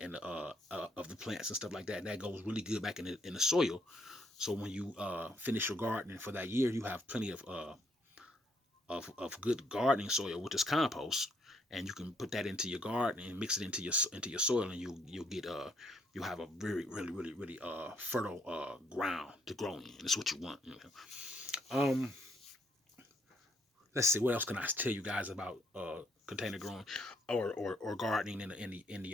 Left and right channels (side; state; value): both; normal; correlation 0.70